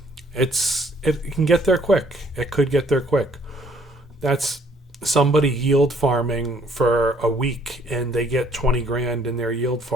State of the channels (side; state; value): both; normal; correlation 0.62